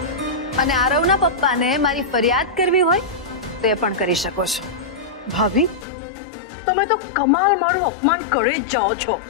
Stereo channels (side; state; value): right; drops out; at 5.9 s